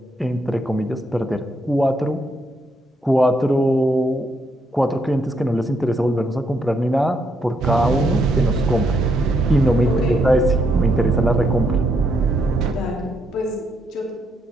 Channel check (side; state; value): both; normal; correlation 0.76